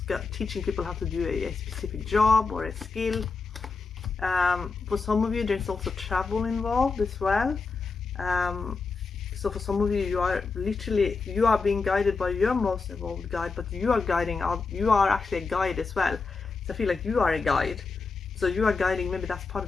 teaching people how to do a specific job or a skill. For some of you, there's also travel involved as well. So for some of you, you are being guided by your most evolved guide, but you are actually a guide as well. So I feel like you are a guide. So you are guiding, maybe that's part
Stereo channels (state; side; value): quieter; right; 4.4 dB